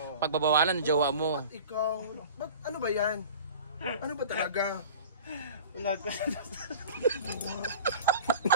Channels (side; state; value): both; inverted; correlation -0.40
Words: pagbabawalan ng jowa mo. Ikaw, ano ba yan? Ano ba talaga? Wala ko.